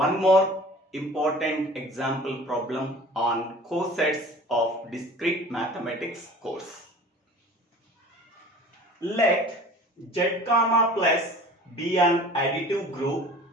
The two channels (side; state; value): both; normal; correlation 0.44